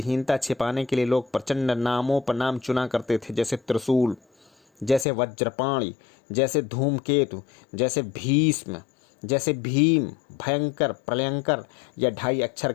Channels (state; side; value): drops out; right; at 5.1 s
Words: छिपाने के लिए लोग प्रचंड नामों पर नाम चुना करते थे, जैसे त्रिशूल, जैसे वज्रपाणी, जैसे धूमकेतु, जैसे भीष्म, जैसे भीम, भयंकर, प्रलयंकर या 2.5 अक्षर